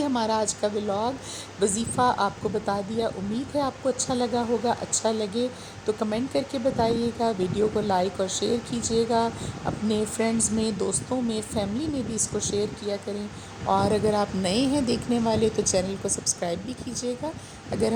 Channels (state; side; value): identical; both; correlation 1.00